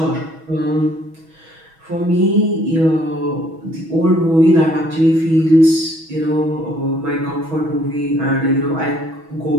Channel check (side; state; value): left; late; 6.2 ms